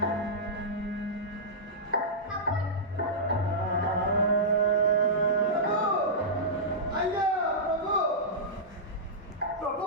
ಅಯ್ಯ ಪ್ರಭು, ಪ್ರಭು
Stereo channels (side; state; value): both; normal; correlation -0.14